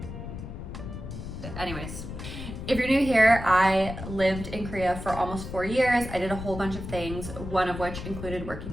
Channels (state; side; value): noise; left; rumble, 9 dB below the sound